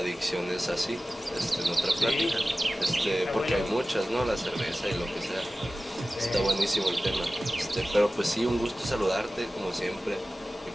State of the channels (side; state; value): both; normal; correlation 0.96